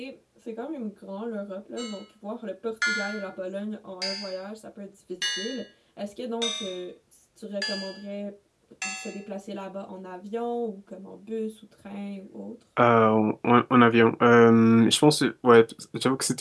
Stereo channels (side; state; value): both; identical; correlation 1.00